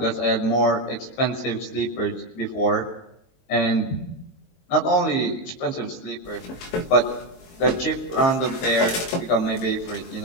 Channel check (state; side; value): late; right; 23 ms